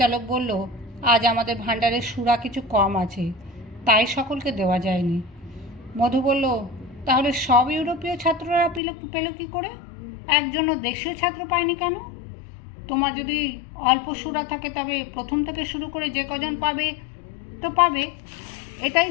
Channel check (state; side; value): drops out; right; at 8.8 s